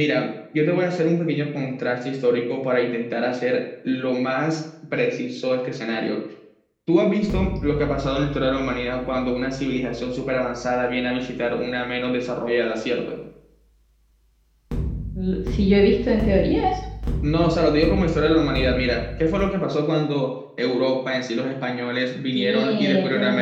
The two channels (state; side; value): identical; both; correlation 1.00